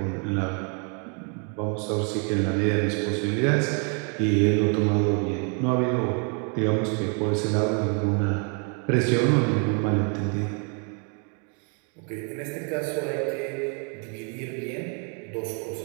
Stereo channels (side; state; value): left; quieter; 39.2 dB